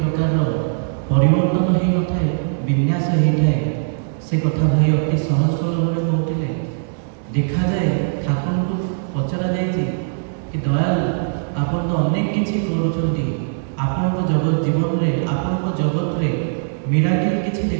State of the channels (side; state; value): left; silent; digital silence